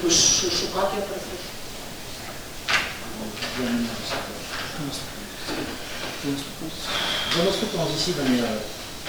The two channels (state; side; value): identical; both; correlation 1.00